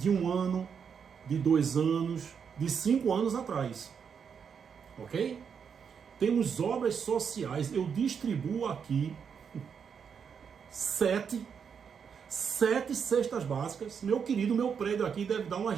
1 ano, de 2 anos, de 5 anos atrás. Ok? Temos obras sociais. Eu distribuo aqui 7 cestas básicas. Meu querido, meu prédio aqui deve dar umas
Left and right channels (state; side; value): quieter; left; 6.8 dB